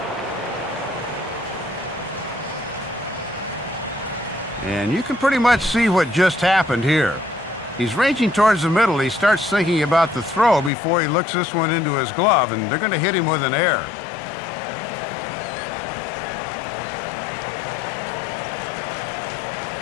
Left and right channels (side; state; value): right; drops out; at 10.7 s